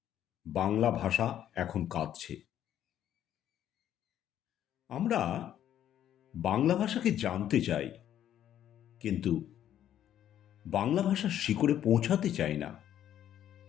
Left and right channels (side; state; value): right; quieter; 10.9 dB